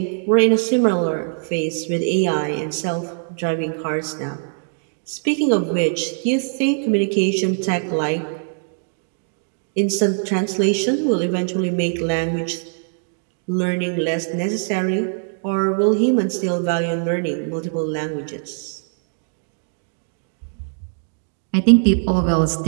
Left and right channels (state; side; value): silent; left; digital silence